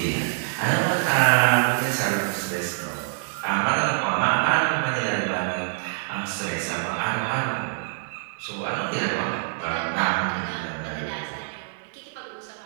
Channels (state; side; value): silent; left; digital silence